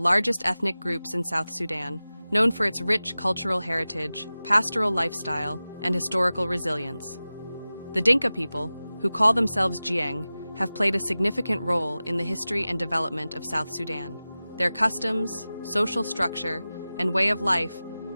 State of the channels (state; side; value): inverted; both; correlation -0.96